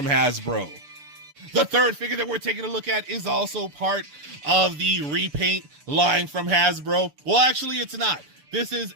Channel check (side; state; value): left; late; 6.9 ms